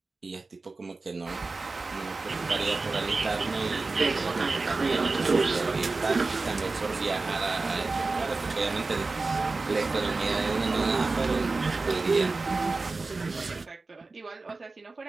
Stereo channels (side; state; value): left; quieter; 3.7 dB